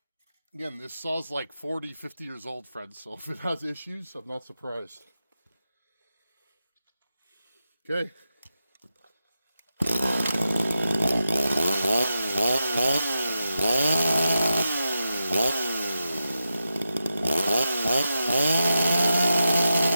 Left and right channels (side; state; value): both; inverted; correlation -0.89